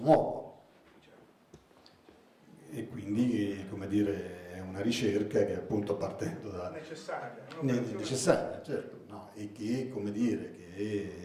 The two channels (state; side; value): identical; both; correlation 1.00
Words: E quindi, come dire, è una ricerca che appunto partendo da... necessaria, certo, no? E che, come dire,